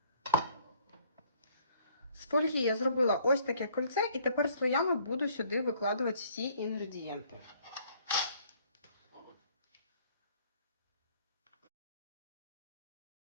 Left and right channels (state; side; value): inverted; both; correlation -0.59